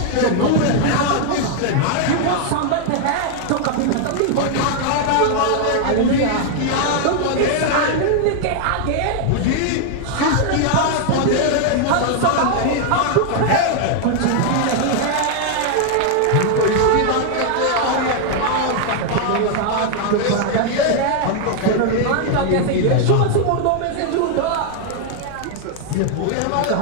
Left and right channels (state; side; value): different; both; correlation 0.00